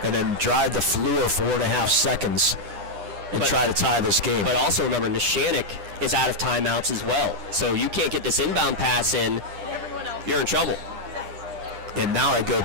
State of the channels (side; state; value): left; late; 9.9 ms